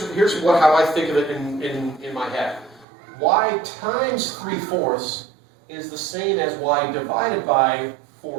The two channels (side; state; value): left; drops out; at 2.9 s